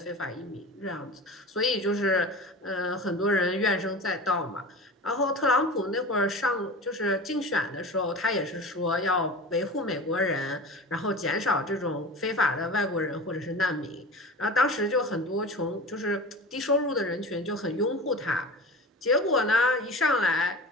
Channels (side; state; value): both; normal; correlation 0.33